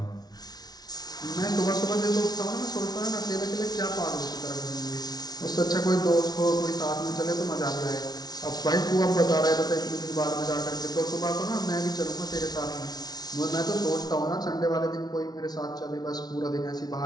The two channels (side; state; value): right; late; 0.19 ms